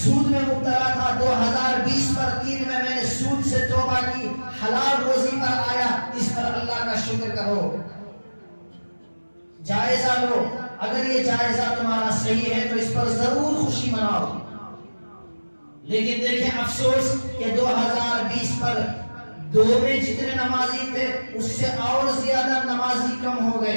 میں مبتلا تھا، 2020 پر 3 میں نے سود سے توبہ کی، حلال روزی پر آیا، اس پر اللہ کا شکر کرو، جائزہ لو، اگر یہ جائزہ تمہارا صحیح ہے تو اس پر ضرور خوشی مناؤ۔ لیکن دیکھیں افسوس کہ 2020 پر 2 میں جتنے نمازی تھے اس سے اور زیادہ نمازی کم ہو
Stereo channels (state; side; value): inverted; both; correlation -1.00